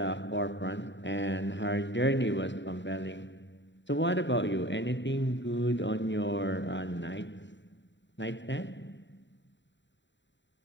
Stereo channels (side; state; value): right; late; 0.53 ms